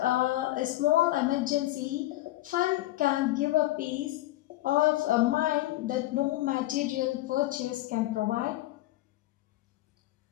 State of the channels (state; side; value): quieter; right; 16.6 dB